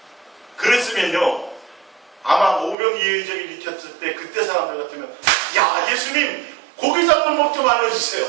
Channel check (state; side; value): drops out; left; at 2.8 s